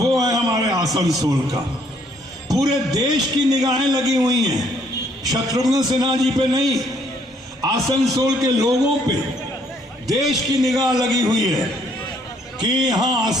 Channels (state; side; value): normal; both; correlation 0.67